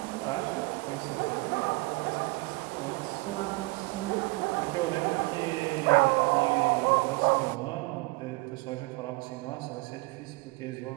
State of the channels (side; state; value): left; quieter; 26.2 dB